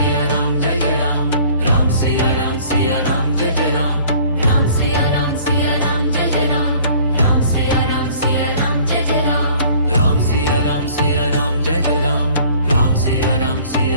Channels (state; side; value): inverted; both; correlation -0.52